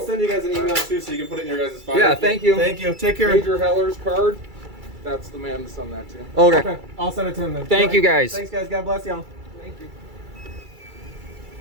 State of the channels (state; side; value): late; left; 2.3 ms